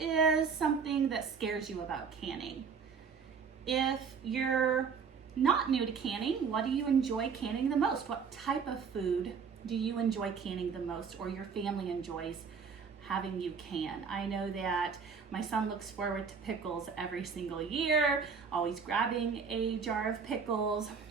something that scares you about canning? If you're not new to canning, what do you enjoy canning the most? What type of food do you enjoy canning the most, or your family enjoys having you can? I know that my son looks forward to pickles every single year, always grabbing a jar of pickles.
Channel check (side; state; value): left; quieter; 5.9 dB